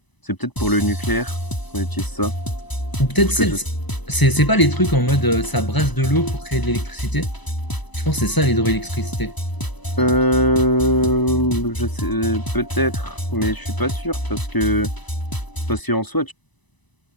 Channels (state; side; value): late; right; 1.0 ms